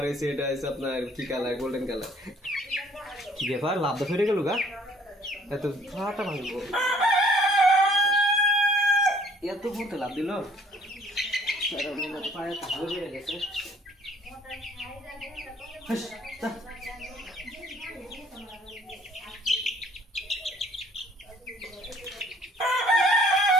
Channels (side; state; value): both; normal; correlation 0.58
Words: এসে এটা হচ্ছে আপনার কি কালার, গোল্ডেন কালার। কি ব্যাপার, লাভ ফেটে গেল গা, এত ফাটা ভাঙবো, এত বলতে লাভ দিল। পায়ে তাহলে বেড়ে গেছে।